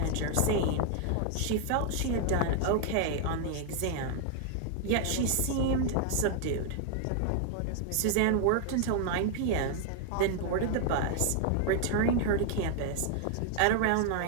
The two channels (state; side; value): different; both; correlation 0.00